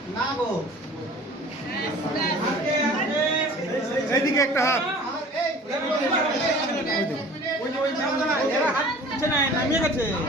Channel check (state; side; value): normal; both; correlation 0.45